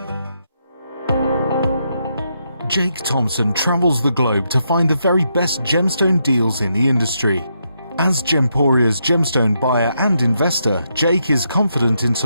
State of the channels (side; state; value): both; inverted; correlation -0.81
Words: Jake Thompson travels the globe to find the very best gemstone deals in the industry. As Gemporia's gemstone buyer and investor, Jake is confident in